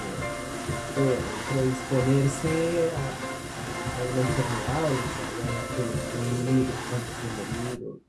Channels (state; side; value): identical; both; correlation 1.00